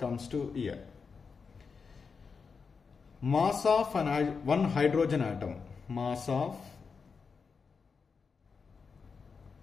to here. Mass of one hydrogen atom. Mass of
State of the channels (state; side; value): quieter; right; 5.3 dB